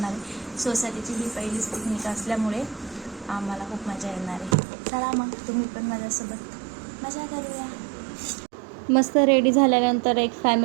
आहे. सोसायटीची ही पहिलीच पिकनिक असल्यामुळे आम्हाला खूप मजा येणार आहे. चला मग तुम्ही पण माझ्यासोबत मजा करूया. मस्त रेडी झाल्यानंतर एक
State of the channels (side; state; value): left; drops out; at 4.5 s